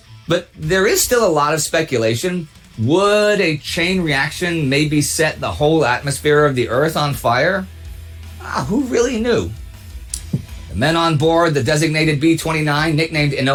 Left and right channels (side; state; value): both; identical; correlation 1.00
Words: But there is still a lot of speculation. Would a chain reaction maybe set the whole atmosphere of the Earth on fire? Who really knew? The men on board the designated B-29, nicknamed